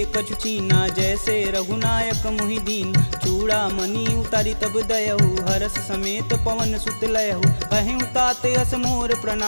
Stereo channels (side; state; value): both; inverted; correlation -1.00